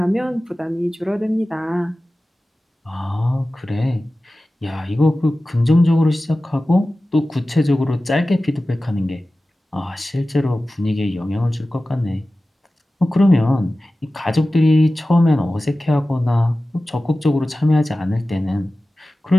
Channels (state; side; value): normal; both; correlation 0.96